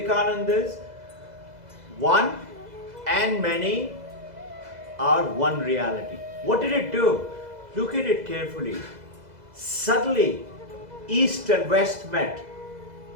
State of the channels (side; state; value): left; late; 2.0 ms